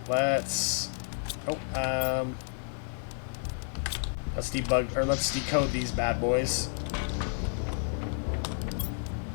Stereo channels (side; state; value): right; silent; 57 dB below the other